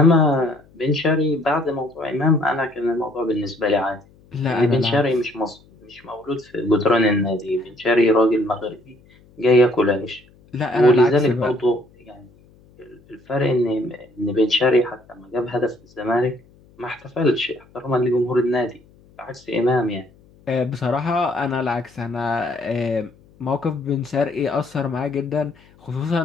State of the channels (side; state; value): left; noise; hum, 28 dB below the sound